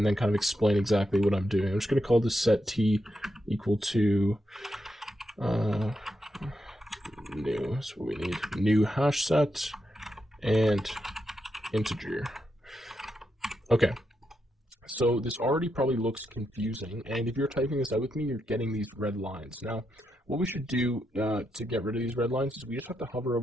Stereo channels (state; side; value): normal; both; correlation 0.84